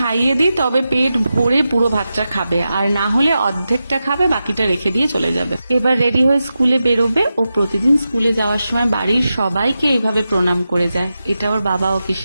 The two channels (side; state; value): both; inverted; correlation -0.91